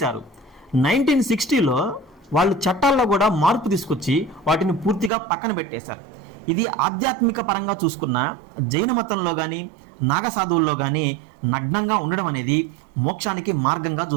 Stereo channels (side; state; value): left; drops out; at 5.1 s